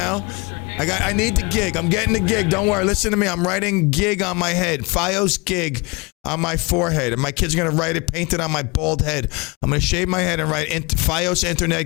I need the gig. I'm getting the gig. Don't worry. Listen to me. I'm writing gig on my head. Fios gig on my forehead. And my kid's going to write it, paint it on my bald head. I'm going to shave my head and write Fios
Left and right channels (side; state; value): right; quieter; 27.7 dB